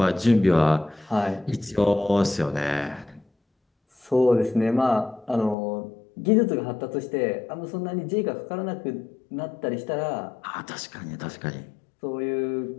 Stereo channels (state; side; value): drops out; right; at 5.6 s